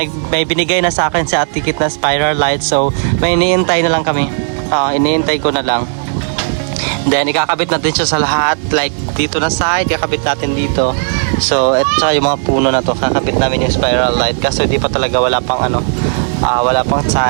binigay na sa akin si Ate Kit na spiral light. So, may iniintay na lang kami. Iniintay ko na lang. Then, ikakabit natin siya sa lahat. Like, dito na side, ikakabit natin dito. So, at saka yung mga puno na to, kakabit namin yung spiral light. Kasi di pa talaga wala pang wala pang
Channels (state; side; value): silent; left; digital silence